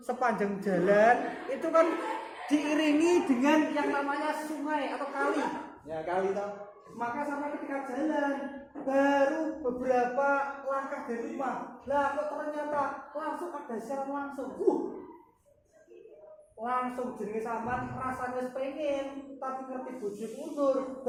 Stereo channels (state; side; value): identical; both; correlation 1.00